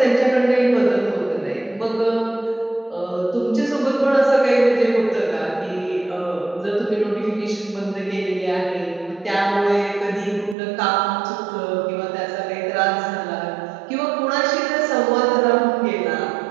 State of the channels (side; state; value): left; drops out; at 10.6 s